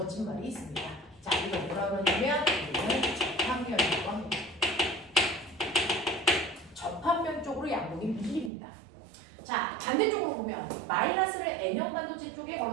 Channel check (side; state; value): left; drops out; at 8.5 s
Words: 말이 있습니다. 자, 이거 뭐라 그러냐면 이거는 접합면이라고 합니다. 접합면 쪽으로 양극이 밀립니다. 자, 반대쪽으로 보면 마이너스를 N형 반도체 쪽에